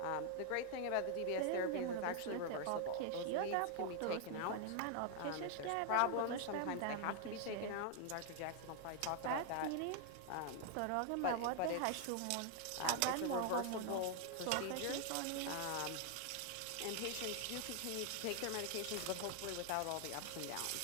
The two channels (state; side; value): different; both; correlation 0.00